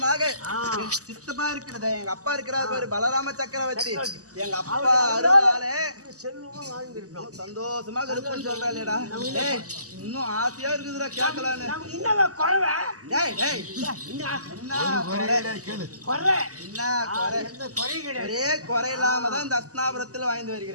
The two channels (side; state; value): left; late; 0.66 ms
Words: சித்தப்பா இருக்கிறத எங்க அப்பா இருக்கிறார் பாரு பலராம சக்கரவர்த்தி எங்க அப்பா அருளாலே செல்வமும் வாழ்ந்திருக்கோம். சந்தோஷமாக இருக்குன்னு சொல்றாளேடா. இன்னும் ஆசையா இருக்குதுடா கேட்கலான்னு. ஒரே குறை இல்லாம தான் இந்த அஸ்னாபுரத்துல வாய்ந்து